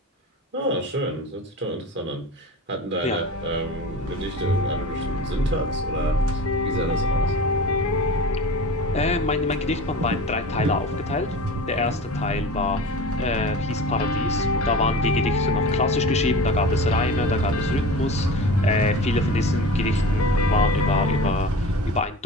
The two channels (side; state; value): both; normal; correlation 0.34